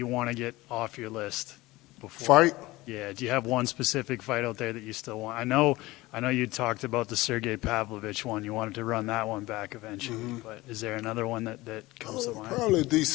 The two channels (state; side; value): quieter; right; 19.7 dB